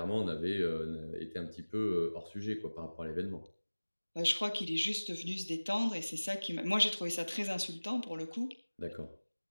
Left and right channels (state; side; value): inverted; both; correlation -1.00